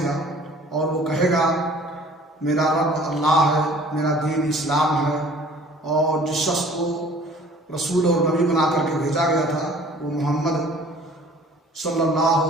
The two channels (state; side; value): normal; both; correlation 0.51